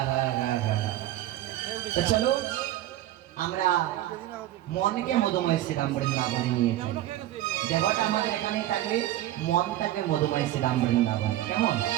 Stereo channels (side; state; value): left; quieter; 14.0 dB